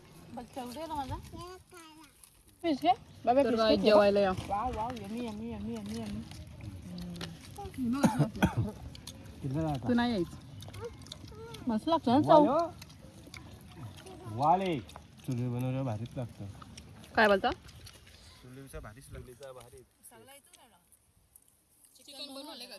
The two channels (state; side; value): identical; both; correlation 1.00